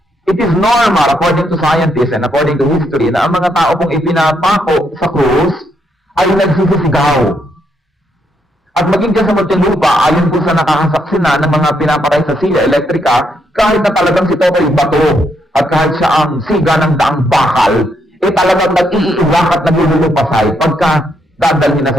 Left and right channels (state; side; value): normal; both; correlation 0.77